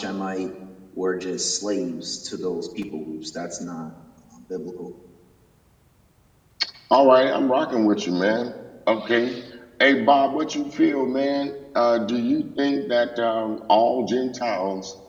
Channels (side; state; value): both; identical; correlation 1.00